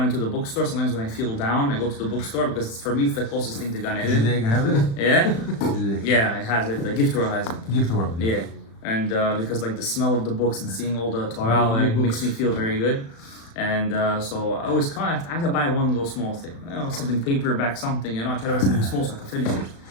into the bookstore. Sometimes when I feel down, I go to the bookstore because for me it's the closest thing to Gan Eden. Did they have it? Yeah? Yeah, it has it. The Gift World has it. Gift World. Yeah. And because like the smell of the books and seeing all the Torah like, makes me feel very good. And so I always I have to buy one little small thing. You know, something paperback, something, I try to buy something small so I can finish it.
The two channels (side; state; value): right; late; 36 ms